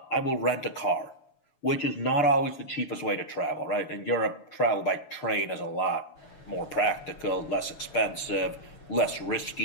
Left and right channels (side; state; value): right; late; 6.9 ms